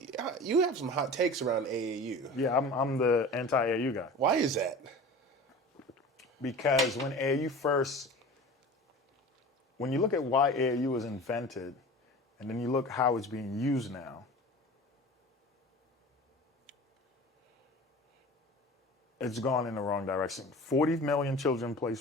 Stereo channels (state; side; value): normal; both; correlation 0.37